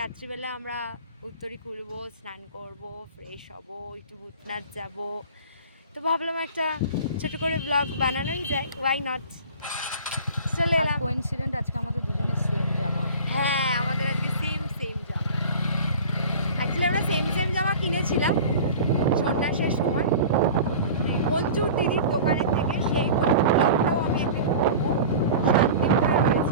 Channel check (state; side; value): inverted; both; correlation -0.38